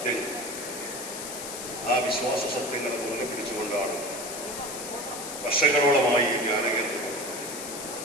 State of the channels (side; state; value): left; noise; hiss, 8 dB below the sound